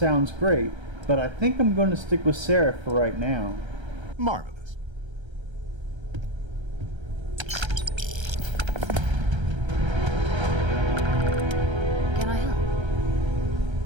great, but I think I'm going to stick with Sarah for right now. Marvelous.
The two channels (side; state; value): left; late; 1.3 ms